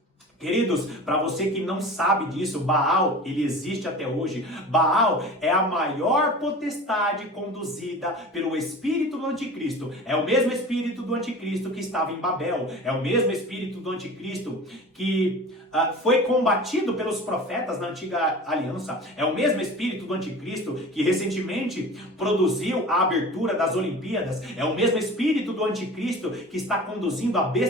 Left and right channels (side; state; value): both; normal; correlation 0.37